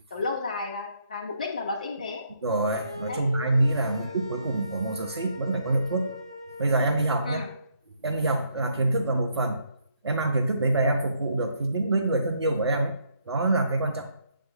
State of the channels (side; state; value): both; inverted; correlation -0.72